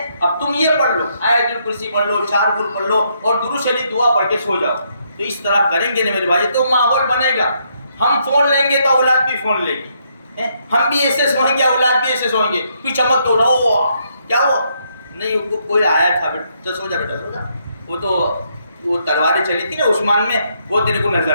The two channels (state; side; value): inverted; both; correlation -0.74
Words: اب تم یہ پڑھ لو، آیت الکرسی پڑھ لو، 4 کل پڑھ لو اور درود شریف دعا پڑھ کے سو جاؤ. تو اس طرح کریں گے نا میرے بھائی تو ماحول بنے گا. ہم فون لیں گے تو اولاد بھی فون لے گی، ہم بھی ایسے سوئیں گے اولاد بھی ایسے سوئیں گے. کوئی چمک تو رہو کیا ہوا نہیں، کوئی آیا تھا بیٹا سو جا، بیٹا سو جا. وہ تلواریں چلی تھی نا عثمان میں، وہ تیرے کو نظر